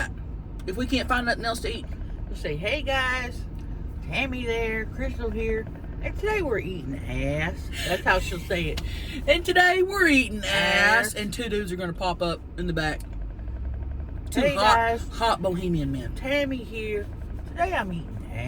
if we can't find nothing else to eat. We'll say, hey guys, Tammy there, Crystal here, and today we're eating ass. That's how she'll say it. And today we're eating ass. And two dudes are going to pop up in the back. Two Hey guys, hot bohemian men. Tammy here. Today I'm eating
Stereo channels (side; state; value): both; identical; correlation 1.00